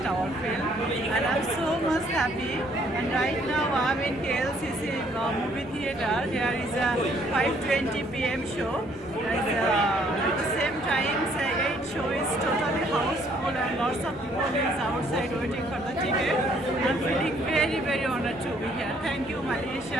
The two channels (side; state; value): both; normal; correlation 0.65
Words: our film, and I'm so much happy. And right now I'm in KLCC movie theater. Here is a 5:20 p.m. show. At the same time, say 8 show is totally houseful and lots of people is outside waiting for the ticket. I'm feeling very, very honored to be here. Thank you,